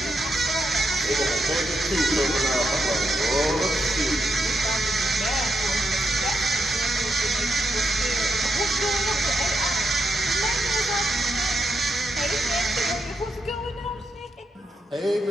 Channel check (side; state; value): both; normal; correlation 0.82